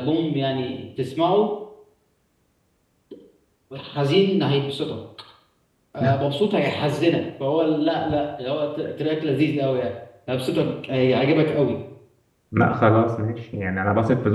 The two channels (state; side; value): identical; both; correlation 1.00